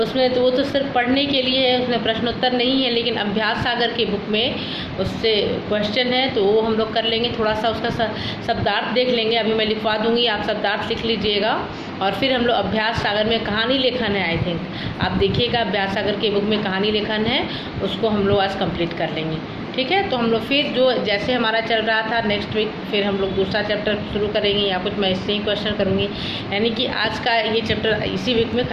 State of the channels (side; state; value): both; identical; correlation 1.00